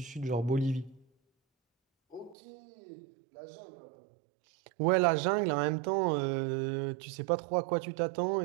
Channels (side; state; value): left; drops out; at 2.4 s